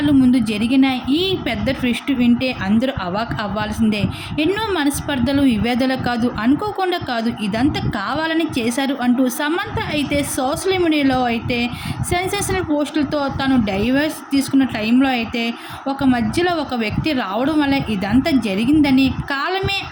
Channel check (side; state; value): both; identical; correlation 1.00